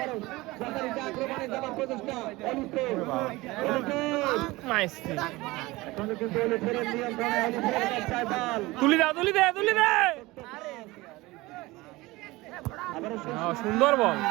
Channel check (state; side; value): quieter; left; 20.8 dB